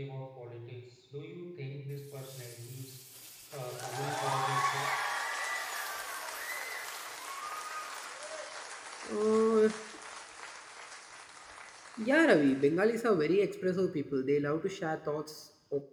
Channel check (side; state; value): both; identical; correlation 1.00